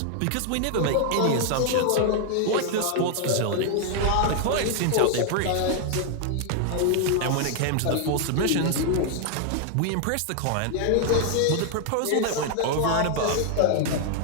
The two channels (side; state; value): both; different; correlation 0.00